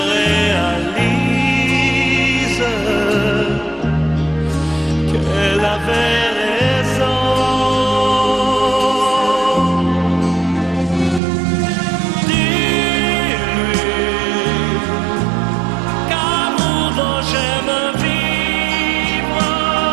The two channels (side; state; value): left; drops out; at 11.2 s